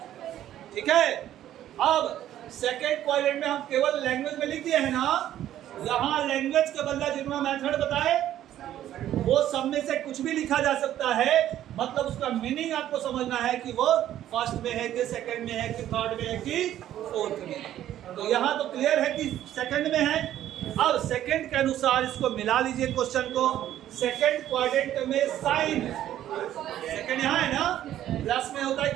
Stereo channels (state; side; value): quieter; left; 12.1 dB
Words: ठीक है। अब सेकंड क्वाड्रेंट में हम केवल लैंग्वेज में लिख दिए है ना, यहाँ लैंग्वेज के बदला जितना मेथड बताए वो सब में से कुछ भी लिखा जा सकता है, मतलब उसका मीनिंग आपको समझना है कि वो फर्स्ट में है कि सेकंड में है कि थर्ड में है कि फोर्थ में। तो यहाँ तो क्लियर है कि सेकंड में है। अब सेकंड के अनुसार इसको मिला लीजिए क्वेश्चन को। सेकंड क्वाड्रेंट में साइन, सेकंड यहाँ है ना, प्लस में होता है